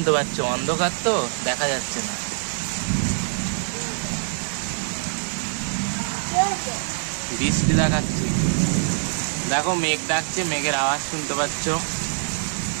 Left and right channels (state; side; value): silent; left; 63 dB below the other